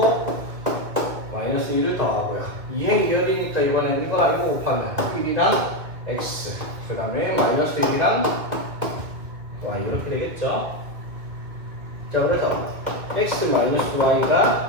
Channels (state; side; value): late; left; 2.1 ms